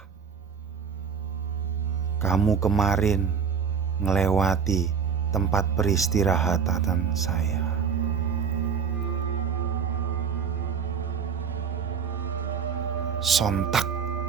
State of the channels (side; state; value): left; quieter; 6.5 dB